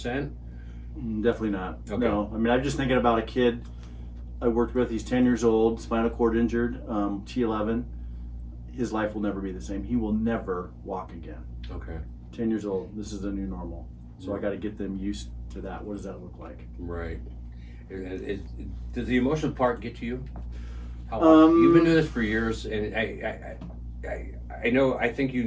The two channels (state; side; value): identical; both; correlation 1.00